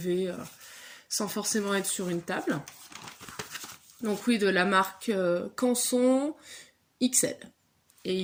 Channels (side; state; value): both; identical; correlation 1.00